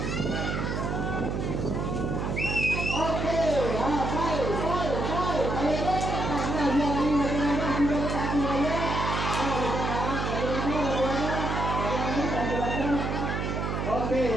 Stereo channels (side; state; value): right; noise; hum, 1 dB below the sound